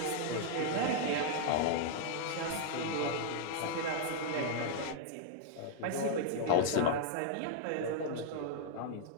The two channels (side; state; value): both; different; correlation -0.01